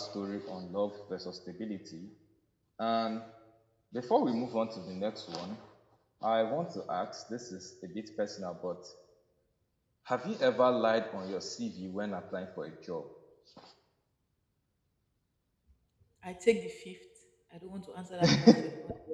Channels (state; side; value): identical; both; correlation 1.00